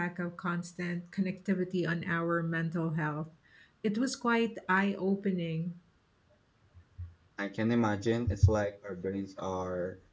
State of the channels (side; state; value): both; identical; correlation 1.00